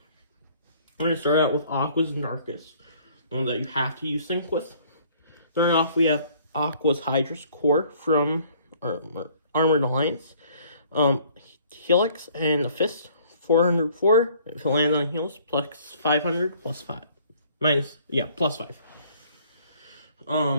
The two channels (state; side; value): inverted; both; correlation -0.58